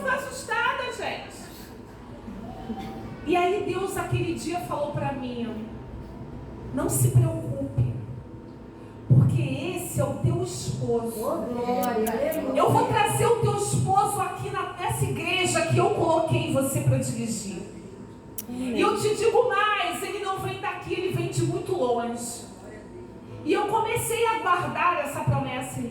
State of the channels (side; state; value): both; identical; correlation 1.00